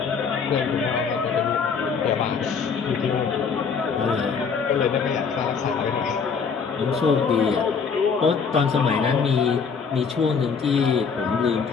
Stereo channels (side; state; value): right; quieter; 5.8 dB